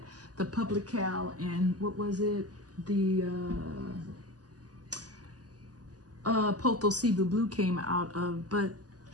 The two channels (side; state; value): left; late; 0.68 ms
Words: the Publical and what was it, the Poto Cebu Blue came out of, but